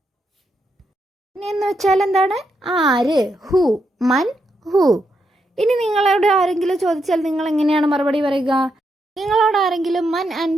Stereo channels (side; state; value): both; normal; correlation 0.81